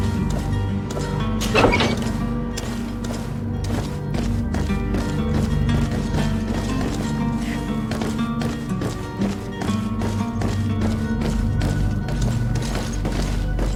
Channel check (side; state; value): both; identical; correlation 1.00